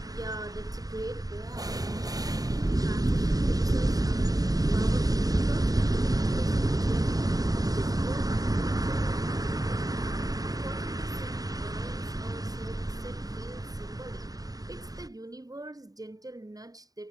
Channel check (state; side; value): late; left; 0.18 ms